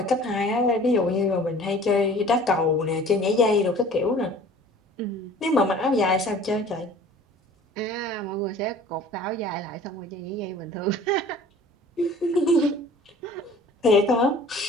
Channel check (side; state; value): both; normal; correlation 0.47